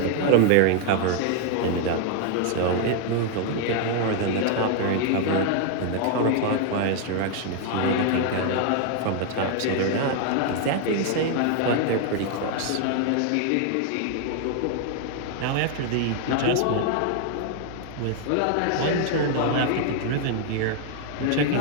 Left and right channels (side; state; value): both; different; correlation 0.00